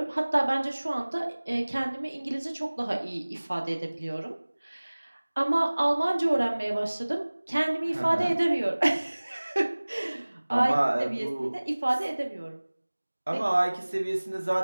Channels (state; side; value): inverted; both; correlation -1.00